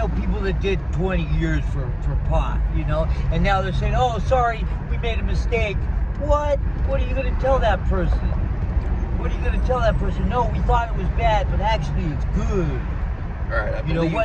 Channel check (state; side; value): identical; both; correlation 1.00